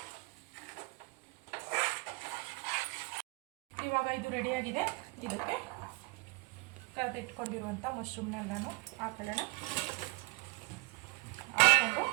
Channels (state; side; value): quieter; left; 25.5 dB